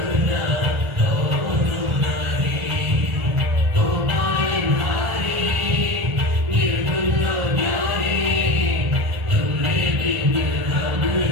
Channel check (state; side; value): late; left; 1.3 ms